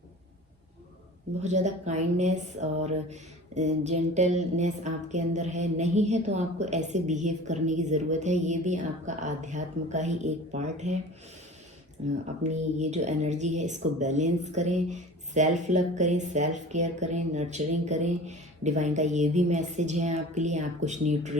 बहुत ज़्यादा काइंडनेस और जेंटलनेस आपके अंदर है। नहीं है तो आपको ऐसे बिहेव करने की ज़रूरत है। ये भी आपका आध्यात्म का ही एक पार्ट है। अपनी ये जो एनर्जी है इसको बैलेंस करें, सेल्फ लव करें, सेल्फ केयर करें, नर्चरिंग करें। डिवाइन का ये भी मैसेज है आपके लिए। आप कुछ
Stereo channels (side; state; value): both; normal; correlation 0.40